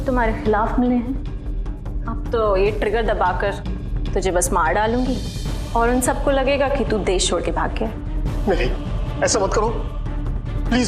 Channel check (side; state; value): both; identical; correlation 1.00